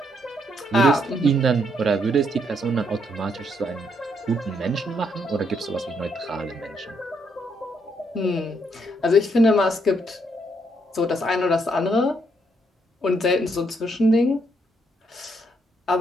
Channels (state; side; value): normal; both; correlation 0.74